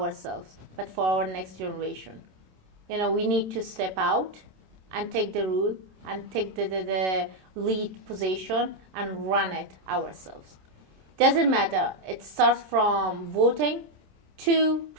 but for our next generation, we need to step out and take the rule and take the lead position and run it ourselves. Doesn't matter. It starts from voting to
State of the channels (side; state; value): left; late; 27 ms